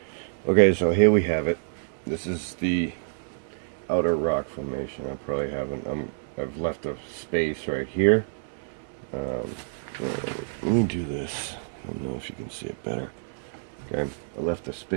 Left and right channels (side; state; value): left; silent; digital silence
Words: Okay, so here we have it. This is the outer rock formation. I probably haven't. I've left a space right here. Let me do this. I don't know if you can see it better. Okay, I left a